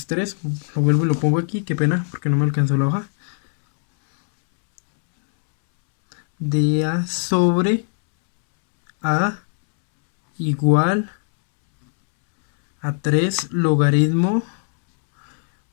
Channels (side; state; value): right; silent; 66 dB below the other